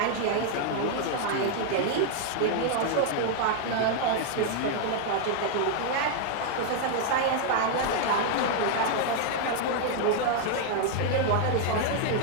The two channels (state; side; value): different; both; correlation 0.00